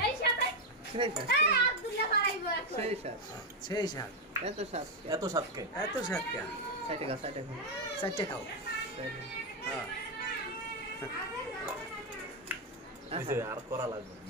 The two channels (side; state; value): both; normal; correlation 0.05